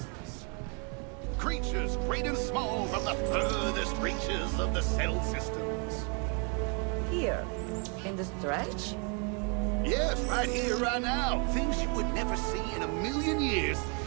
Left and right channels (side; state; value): left; quieter; 36.7 dB